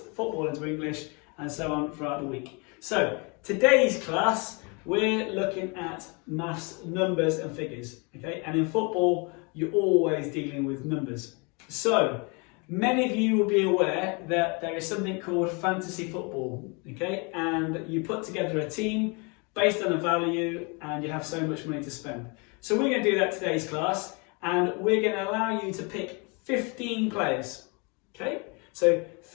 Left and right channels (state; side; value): quieter; right; 31.4 dB